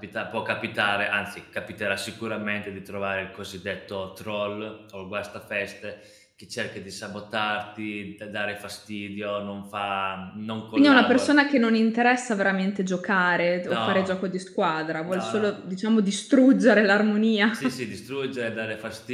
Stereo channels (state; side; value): identical; both; correlation 1.00